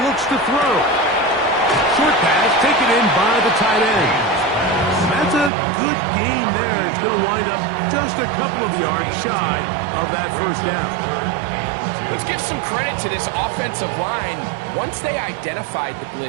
looks to throw. Short pass taken in by the tight end. That's a good gain there. It's going to wind up just a couple of yards shy of that 1st down. Let's give some credit to this offensive line. Once they identified the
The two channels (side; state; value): left; drops out; at 5.5 s